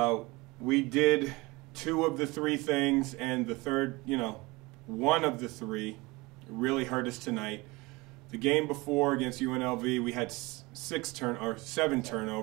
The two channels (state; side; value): quieter; left; 23.4 dB